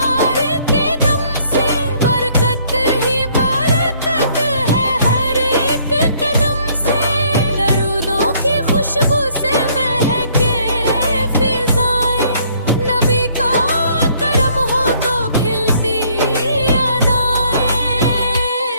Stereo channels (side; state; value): both; inverted; correlation -0.63